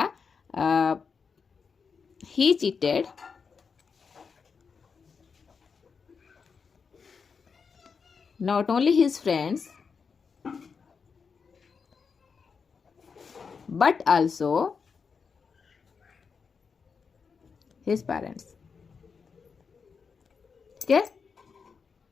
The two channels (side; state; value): right; quieter; 5.6 dB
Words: ही cheated not only his friends but also his parents, ठीक है।